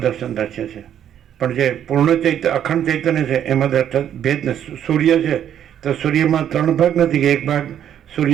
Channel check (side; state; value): left; quieter; 9.9 dB